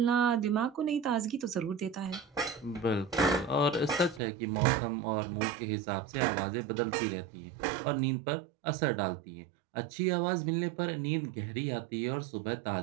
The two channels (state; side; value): drops out; left; at 4.2 s